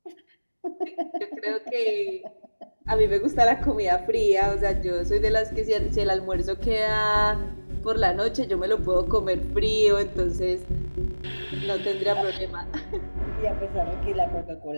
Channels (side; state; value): both; inverted; correlation -1.00